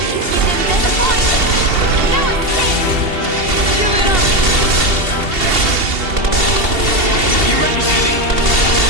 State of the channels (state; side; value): late; left; 2.7 ms